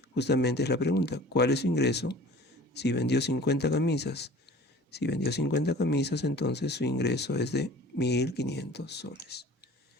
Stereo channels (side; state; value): both; normal; correlation 0.44